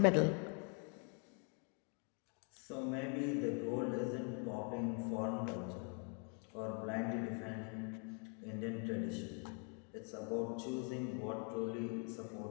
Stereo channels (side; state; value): right; quieter; 39.0 dB